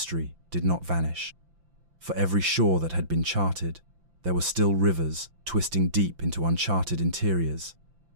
did not vanish. For every shore that had been charted, there were still rivers twisting deep into uncharted interiors,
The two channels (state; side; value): late; left; 5.8 ms